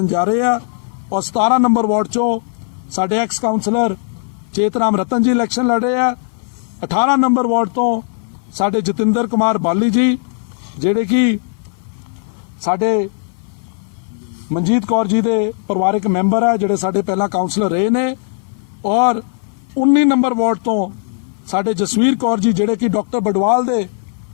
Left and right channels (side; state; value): right; silent; 58 dB below the other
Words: ਜਾ ਰਹੇ ਆ ਔਰ 17 ਨੰਬਰ ਵਾਰਡ 'ਚੋਂ ਸਾਡੇ ਐਕਸ ਕਾਉਂਸਲਰ ਚੇਤਰਾਮ ਰਤਨ ਜੀ ਇਲੈਕਸ਼ਨ ਲੜ ਰਹੇ ਆ 18 ਨੰਬਰ ਵਾਰਡ ਤੋਂ ਸਾਡੇ ਜਤਿੰਦਰ ਕੁਮਾਰ ਬਾਲੀ ਜੀ ਜਿਹੜੇ ਕਿ ਸਾਡੇ ਮਨਜੀਤ ਕੌਰ ਜੀ ਦੇ ਪਰਿਵਾਰਕ ਮੈਂਬਰ ਆ ਜਿਹੜੇ ਸਾਡੇ ਪਹਿਲਾਂ ਕਾਉਂਸਲਰ ਰਹੇ ਨੇ ਔਰ 19 ਨੰਬਰ ਵਾਰਡ ਤੋਂ ਸਾਡੇ ਜਸਵੀਰ ਕੌਰ ਜੀ ਜਿਹੜੇ ਕਿ ਡਾਕਟਰ ਬਡਵਾਲ ਦੇ